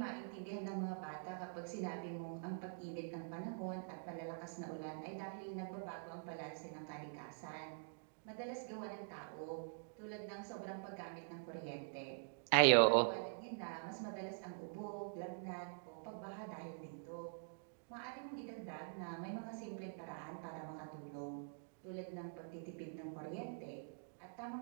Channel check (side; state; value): left; silent; digital silence